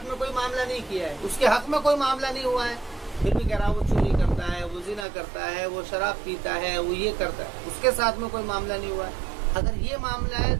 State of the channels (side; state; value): left; drops out; at 5.1 s